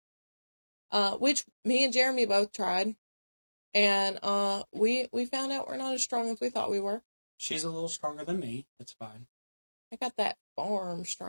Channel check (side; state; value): both; inverted; correlation -1.00